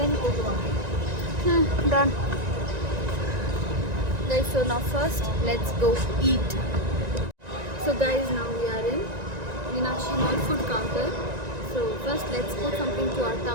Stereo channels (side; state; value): left; late; 1.9 ms